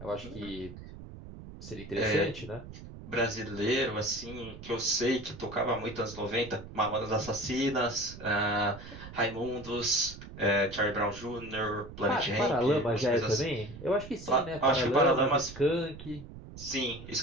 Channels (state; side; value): noise; right; rumble, 14 dB below the sound